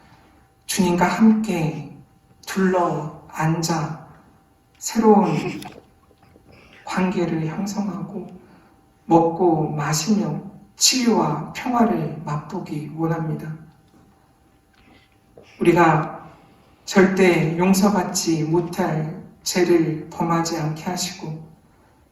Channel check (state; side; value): identical; both; correlation 1.00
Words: 주님과 함께 둘러 앉아 새로운 관계를 형성하고 먹고 마시며 치유와 평화를 맛보기 원합니다. 우리가 절대 용서받지 못할 죄를 범하지 않게 하시고